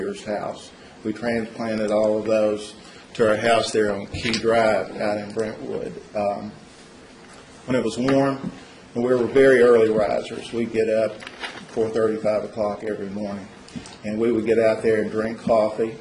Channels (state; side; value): identical; both; correlation 1.00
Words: house. We transplanted all of those to our house there on Key Drive out in Brentwood. When it was warm, and we were very early risers, we'd get up 4:30, 5 o'clock every morning. And we would get out there and drink coffee